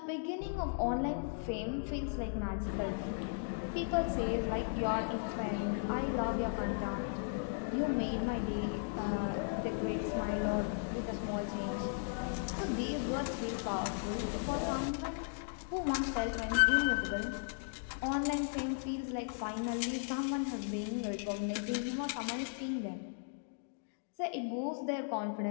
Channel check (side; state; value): right; silent; digital silence